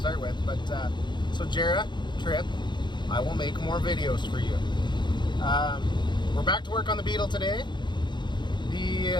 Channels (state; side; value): late; right; 0.22 ms